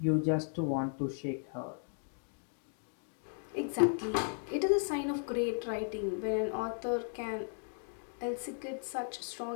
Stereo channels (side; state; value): right; silent; 54 dB below the other